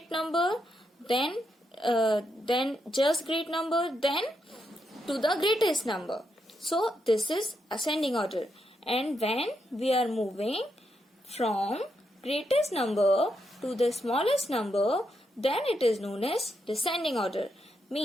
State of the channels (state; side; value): normal; both; correlation 0.82